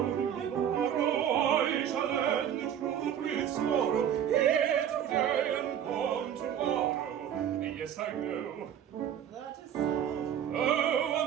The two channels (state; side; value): quieter; left; 9.5 dB